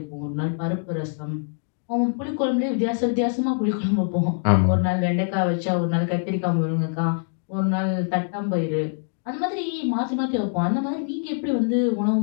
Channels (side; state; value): right; silent; digital silence